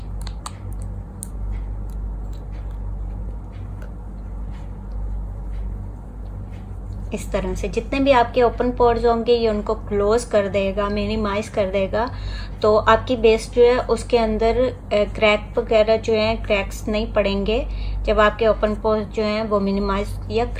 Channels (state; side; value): identical; both; correlation 1.00